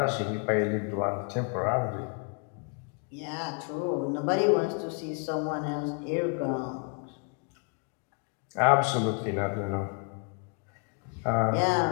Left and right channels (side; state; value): right; quieter; 37.3 dB